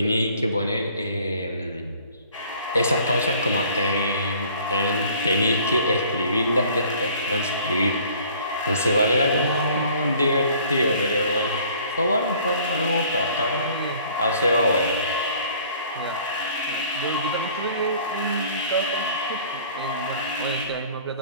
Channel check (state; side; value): inverted; both; correlation -0.54